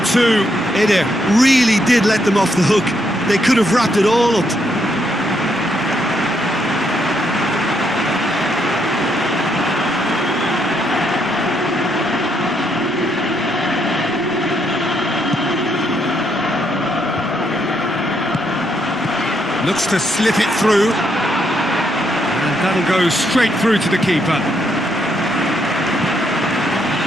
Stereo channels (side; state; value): both; normal; correlation 0.75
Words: two. Ada really did let them off the hook. They could have wrapped it all up. Looks to slip it through, and that'll go straight through to the keeper.